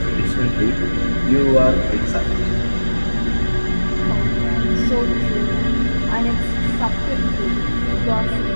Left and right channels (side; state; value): both; inverted; correlation -1.00